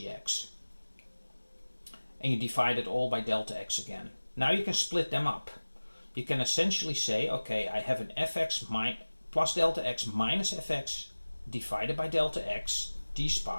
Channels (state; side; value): inverted; both; correlation -1.00